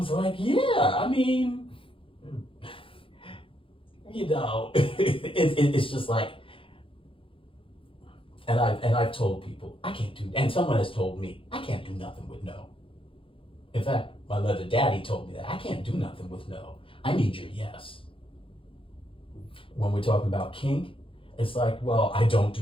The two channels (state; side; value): late; right; 0.26 ms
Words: like, yeah, I mean, you know, it's just like, and I've told people, I can't do, and someone has told me, I can't do nothing with no. In fact, my leather daddy told me that I can't do nothing with no. I need your yes. When we're talking about kink, it's like, well, I don't